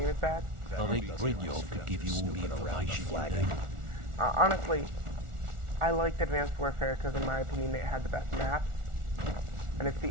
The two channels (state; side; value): late; left; 1.4 ms